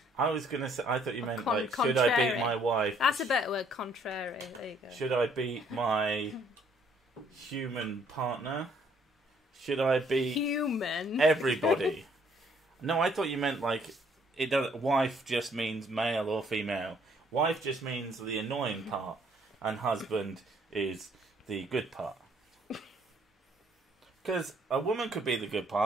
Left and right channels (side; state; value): both; normal; correlation 0.65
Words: was going to say, I thought you meant, Contrary. should I beat my wife? That's a better word, contrary. There you go. Should I beat my human partner? Should I beat... Human? Everybody? No, I thought you meant, wife just means male or female. Wife just means the annoying part, and husband is the good part. Because a woman could be the good